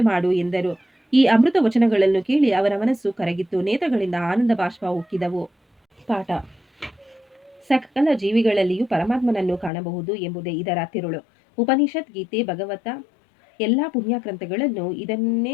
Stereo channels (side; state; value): right; drops out; at 9.7 s